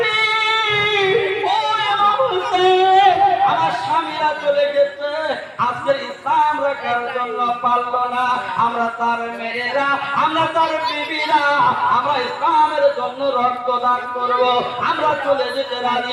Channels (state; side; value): identical; both; correlation 1.00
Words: আমার স্বামীরা চলে গেছে, আজকের ইসলাম রাখার জন্য পারল না। আমরা তার মেয়েরা, আমরা তার বিবিরা, আমরা ইসলামের জন্য রক্তদান করব। আমরা চলে যেতে